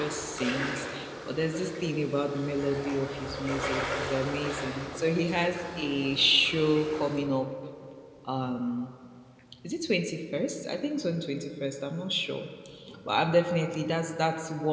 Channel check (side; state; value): both; identical; correlation 1.00